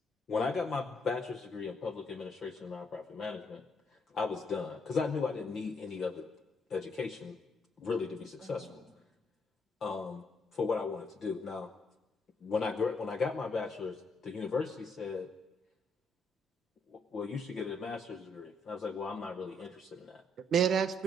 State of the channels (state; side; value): normal; both; correlation 0.73